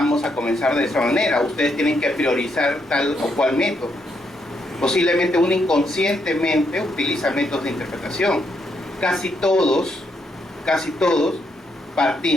a comenzar de esa manera. Ustedes tienen que priorizar tal o cual método. Posiblemente uno inconscientemente utiliza métodos de interpretación. Casi todos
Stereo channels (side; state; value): both; normal; correlation 0.77